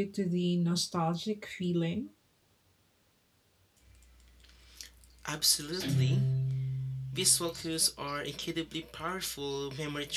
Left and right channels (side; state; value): both; identical; correlation 1.00